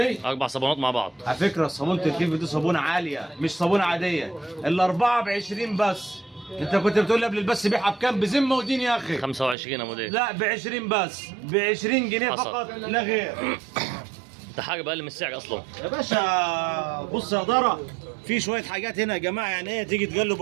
4 صابونات مع بعض. على فكره صابونه الفيفو دي صابونه عاليه مش صابونه عاديه. الاربعه ب 20 بس. انت كنت بتقول لي قبل البث بيعها بكام؟ بذمه ودين يا اخي. 25 يا مدير. لا ب 20 بس، ب 20 جنيه حصل. فقط لا غير. ده حاجه بقل من السعر اصلا يا باشا بص يا دارة، في شويه حاجات هنا يا جماعه، يعني ايه تيجي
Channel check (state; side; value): drops out; left; at 9.6 s